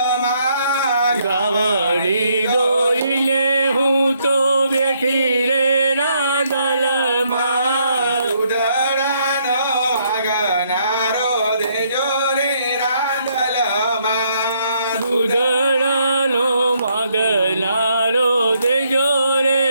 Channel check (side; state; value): both; inverted; correlation -0.72